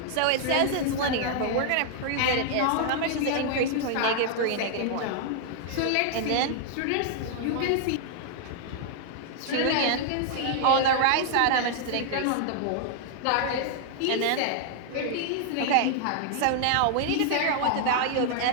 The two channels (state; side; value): different; both; correlation -0.01